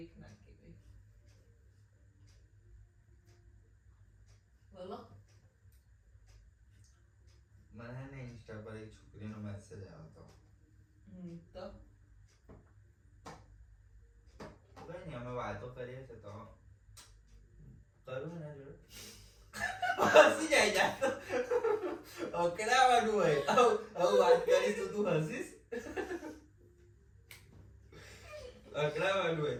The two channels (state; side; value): identical; both; correlation 1.00